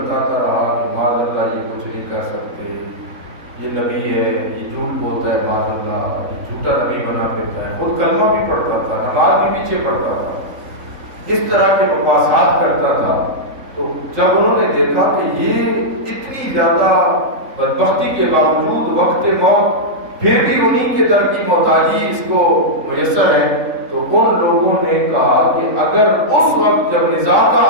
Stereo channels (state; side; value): late; left; 3.8 ms